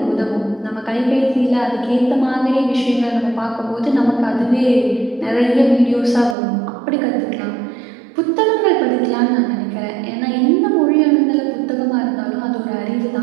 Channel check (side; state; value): left; drops out; at 6.4 s